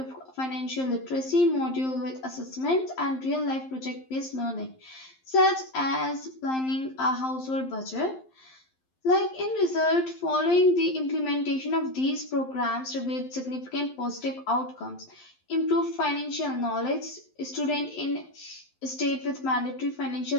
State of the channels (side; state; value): right; late; 11 ms